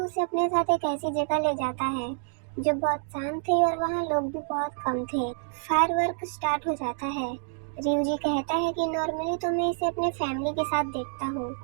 अपने साथ एक ऐसी जगह ले जाता है जो बहुत शांत थी और वहाँ लोग भी बहुत कम थे। फायरवर्क स्टार्ट हो जाता है। रियूजी कहता है कि नॉर्मली तो मैं इसे अपने फैमिली के साथ देखता हूँ,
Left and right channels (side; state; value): left; silent; digital silence